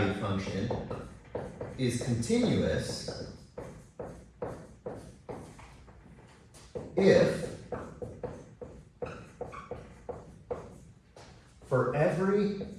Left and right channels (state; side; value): identical; both; correlation 1.00